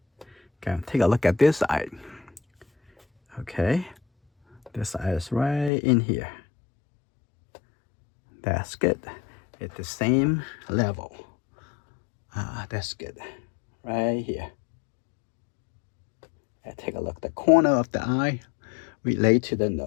Okay, take a look at this eye. Okay, this eye is right in here. That's good. At the same level. That's good. Right here. And take a look. The corner of the eye relate to the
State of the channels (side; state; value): right; drops out; at 5.7 s